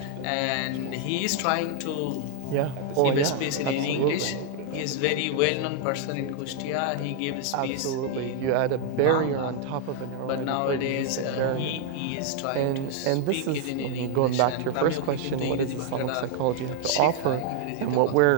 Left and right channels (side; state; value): both; different; correlation 0.00